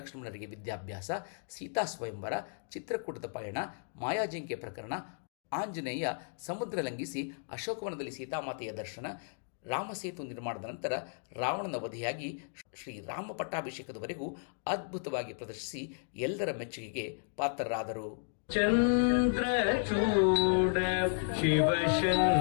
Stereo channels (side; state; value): right; silent; digital silence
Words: ವಿದ್ಯಾಭ್ಯಾಸ, ಸೀತಾ ಸ್ವಯಂವರ, ಚಿತ್ರಕೂಟದ ಪಯಣ, ಮಾಯಾಜಿಂಕೆ ಪ್ರಕರಣ, ಆಂಜನೇಯ ಸಮುದ್ರ ಲಂಘಿಸಿ ಅಶೋಕವನದಲ್ಲಿ ಸೀತಾಮಾತೆಯ ದರ್ಶನ, ರಾಮಸೇತು ನಿರ್ಮಾಣದ ನಂತರ ರಾವಣನ ವಧೆಯಾಗಿ ಶ್ರೀರಾಮ ಪಟ್ಟಾಭಿಷೇಕದವರೆಗೂ ಅದ್ಭುತವಾಗಿ ಪ್ರದರ್ಶಿಸಿ ಎಲ್ಲರ ಮೆಚ್ಚುಗೆಗೆ ಪಾತ್ರರಾದರು. ಚಂದ್ರಚೂಡ